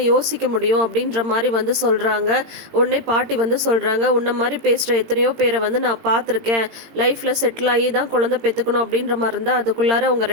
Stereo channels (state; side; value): late; left; 18 ms